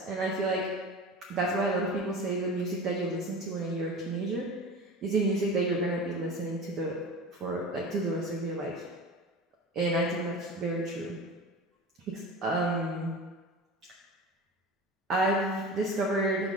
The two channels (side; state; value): both; normal; correlation 0.33